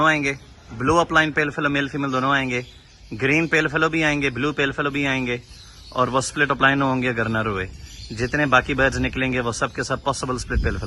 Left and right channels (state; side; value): identical; both; correlation 1.00